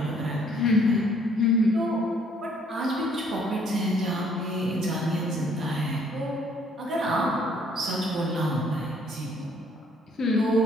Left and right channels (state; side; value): normal; both; correlation 0.63